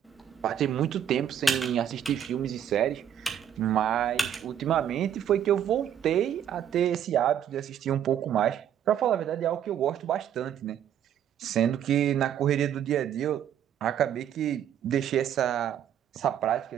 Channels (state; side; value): quieter; left; 9.5 dB